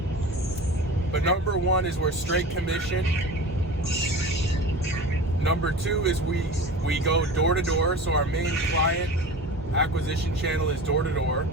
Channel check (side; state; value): both; normal; correlation 0.34